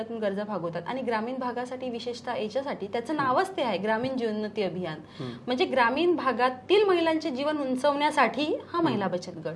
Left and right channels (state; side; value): identical; both; correlation 1.00